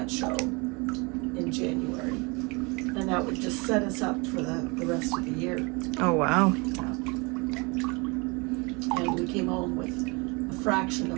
show in January. And that would just set us up for the rest of the year. Oh, wow. And we came home with a fraction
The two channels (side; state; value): left; quieter; 28.4 dB